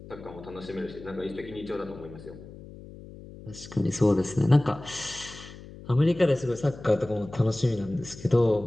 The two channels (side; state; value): left; noise; hum, 16 dB below the sound